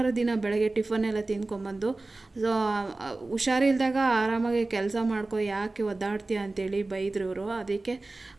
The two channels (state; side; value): quieter; left; 3.2 dB